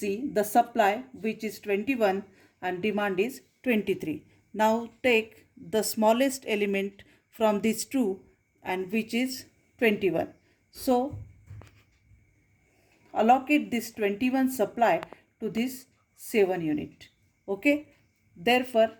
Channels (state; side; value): identical; both; correlation 1.00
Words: the supply, which is 21 and demand is 23. Now take the smallest element from these two, and which is 21. So allocate this 21 supply to this 7 unit. Okay. Therefore,